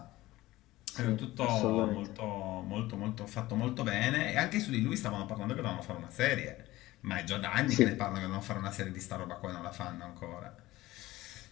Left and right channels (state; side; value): quieter; right; 17.5 dB